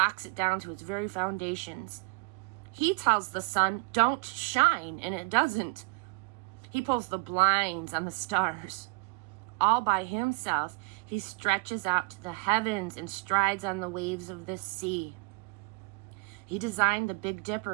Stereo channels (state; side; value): quieter; left; 29.0 dB